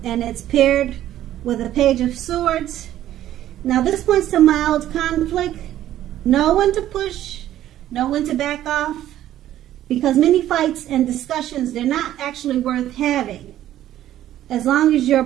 And it's paired with a Page of Swords. Now this points to mild conflict. Know when to push, know when to back off, because many fights and discussions, they're not actually worth having as long as your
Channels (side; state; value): left; quieter; 12.6 dB